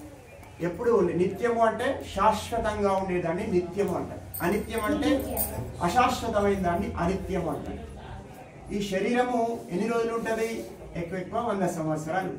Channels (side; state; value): both; identical; correlation 1.00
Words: ఎప్పుడు నిత్యము అంటే శాశ్వతంగా ఉండేదాన్ని నిత్యము అంటారు. అనిత్యం అంటే అశాశ్వతమైన దాన్ని అనిత్యము అంటారు. ఈ శరీరము ఎన్ని రోజులు ఉంటుంది? ఎక్కువ 100 సంవత్సరాలు